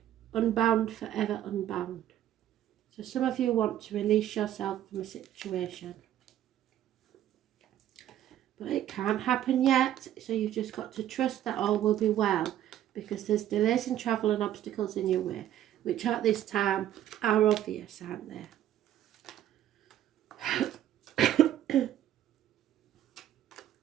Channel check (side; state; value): left; quieter; 11.8 dB